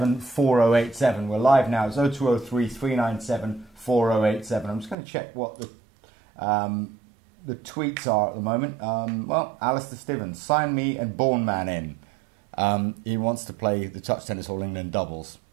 4087. We're live now. It's 0203 397 4087. I'm just going to check what the tweets are at the moment. Well, Alistair Stevens, sign me and Born Man in. He wants to play the Touch Tennis All England doubles.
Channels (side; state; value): left; drops out; at 5.0 s